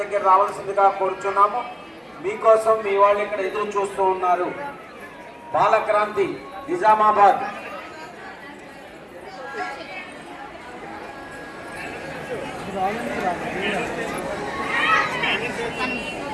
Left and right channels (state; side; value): identical; both; correlation 1.00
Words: దగ్గర రావాల్సిందిగా కోరుచున్నాము. మీకోసం మీ వాళ్ళు ఇక్కడ ఎదురు చూస్తూ ఉన్నారు. బాలక్రాంతి నిజామాబాద్.